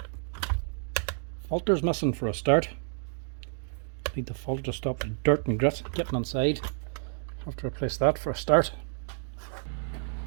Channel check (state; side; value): silent; left; 58 dB below the other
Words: Filter's missing for a start. Need the filter to stop the dirt and grit getting inside. Have to replace that for a start.